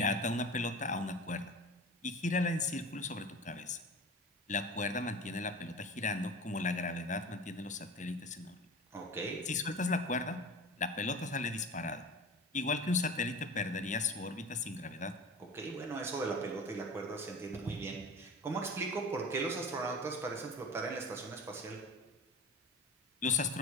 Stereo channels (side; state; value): both; normal; correlation 0.34